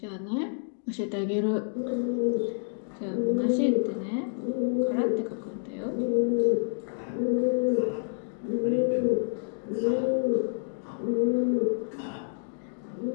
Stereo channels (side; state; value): right; silent; digital silence